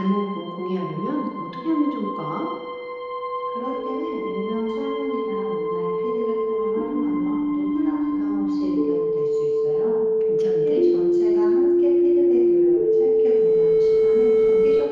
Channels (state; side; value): identical; both; correlation 1.00